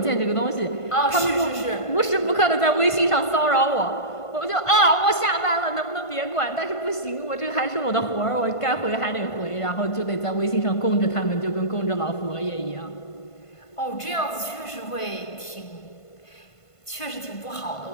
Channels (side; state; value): right; late; 1.5 ms